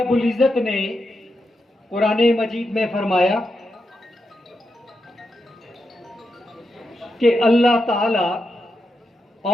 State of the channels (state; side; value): normal; both; correlation 0.86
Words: العزت نے قرآن مجید میں فرمایا کہ اللہ تعالی